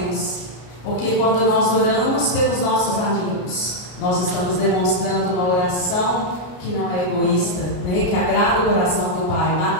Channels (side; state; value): right; late; 33 ms